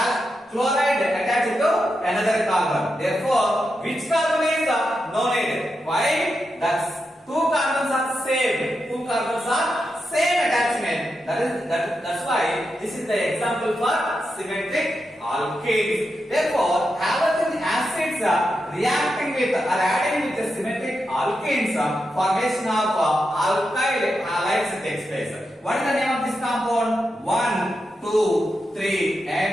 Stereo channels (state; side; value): normal; both; correlation 0.87